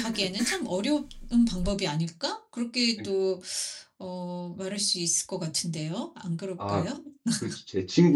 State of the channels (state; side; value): identical; both; correlation 1.00